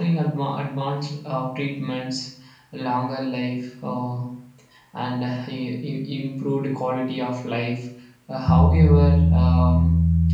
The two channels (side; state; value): both; identical; correlation 1.00